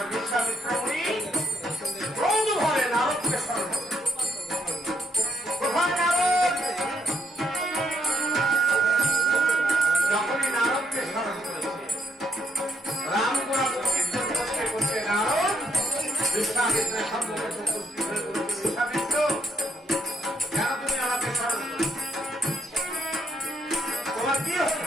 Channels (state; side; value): normal; both; correlation 0.73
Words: বিশ্বামিত্র মুনি ক্রোধ ভরে নারদকে স্মরণ করে। কোথায় নারদ? যখনই নারদকে স্মরণ করেছে, রাম গোড়া কীর্তন করতে করতে নারদ বিশ্বামিত্রের সম্মুখে উপস্থিত হয়ে বলছে, বিশ্বামিত্র, কেন তুমি আমাকে স্মরণ করো? তোমার কি